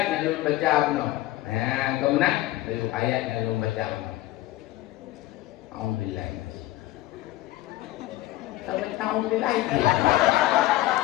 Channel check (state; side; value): quieter; right; 16.3 dB